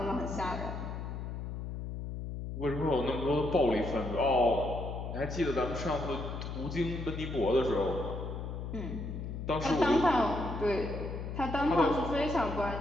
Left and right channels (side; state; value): left; noise; hum, 6 dB below the sound